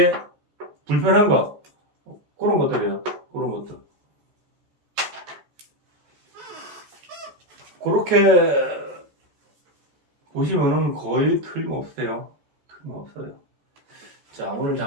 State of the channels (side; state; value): left; late; 14 ms